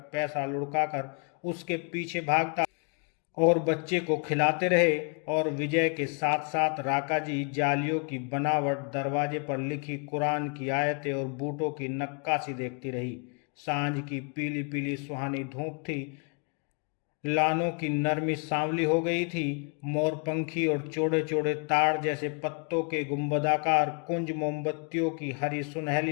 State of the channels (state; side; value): quieter; right; 36.3 dB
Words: पैसा लुढ़काकर उसके पीछे भागता और बच्चे को खिलाते रहे, और विजय के साथ साथ राका जी जालियों की बनावट, दरवाजे पर लिखी कुरान की आयतें और बूटों की नक्काशी देखती रही। सांझ की पीली पीली सुहानी धूप थी, लानों की नरमी सांवली हो गई थी। मोरपंखी और चौड़े चौड़े ताड़ जैसे पत्तों के गुंबदाकार कुंज मोमबत्तियों की हरी